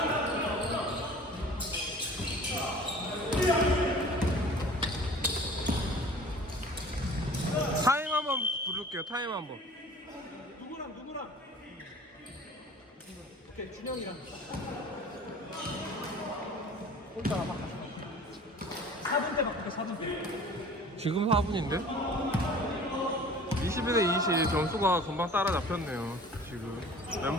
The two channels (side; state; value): both; normal; correlation 0.45